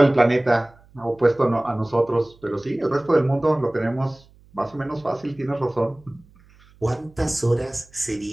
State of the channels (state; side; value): noise; right; hum, 28 dB below the sound